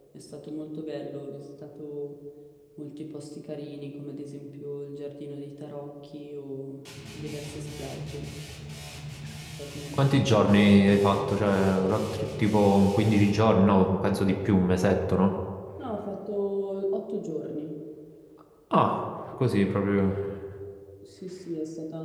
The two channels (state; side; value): identical; both; correlation 1.00